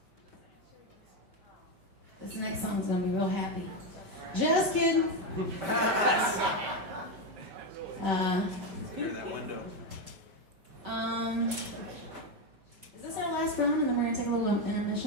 This next song's gonna be real happy. Just kidding. Clear that window. Is this our last round and then we're gonna take a little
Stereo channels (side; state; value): left; late; 5.2 ms